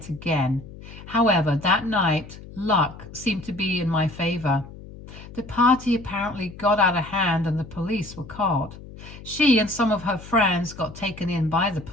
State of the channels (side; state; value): left; noise; hum, 16 dB below the sound